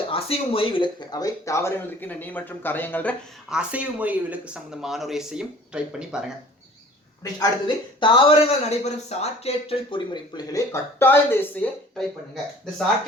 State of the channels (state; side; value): normal; both; correlation 0.49